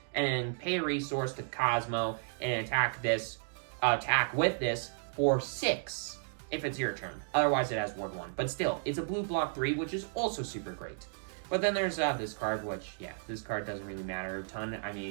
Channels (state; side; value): silent; left; digital silence